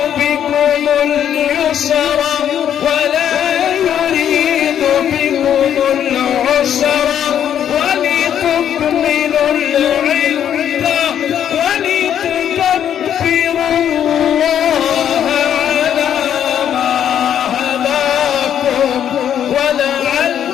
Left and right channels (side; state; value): right; quieter; 9.6 dB